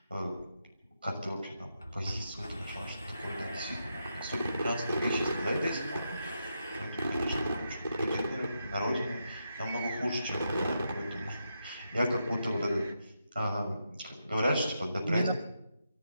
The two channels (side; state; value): both; inverted; correlation -0.84